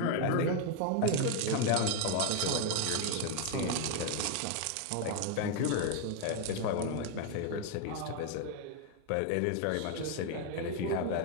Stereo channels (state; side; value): different; both; correlation 0.01